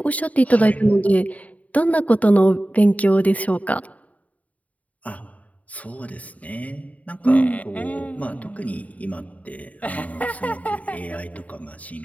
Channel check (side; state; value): right; late; 0.070 ms